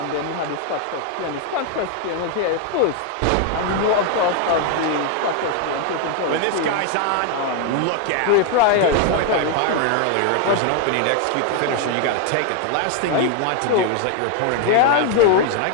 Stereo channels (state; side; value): different; both; correlation 0.01